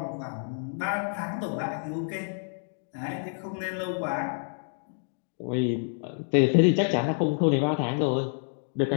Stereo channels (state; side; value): silent; right; digital silence